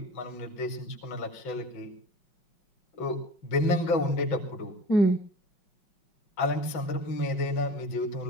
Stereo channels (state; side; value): late; right; 5.4 ms